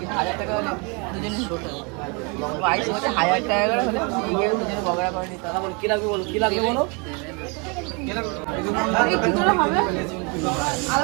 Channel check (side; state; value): left; quieter; 32.1 dB